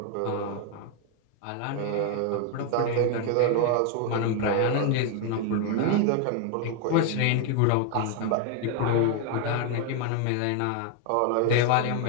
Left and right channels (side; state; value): both; different; correlation 0.01